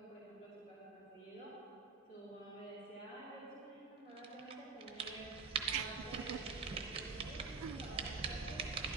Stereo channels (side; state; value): left; quieter; 4.5 dB